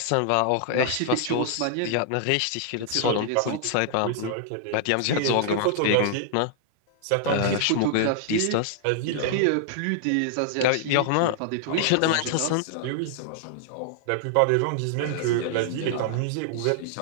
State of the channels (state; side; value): different; both; correlation -0.01